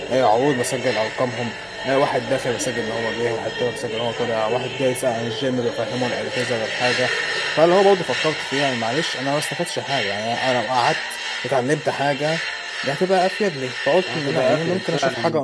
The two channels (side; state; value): both; identical; correlation 1.00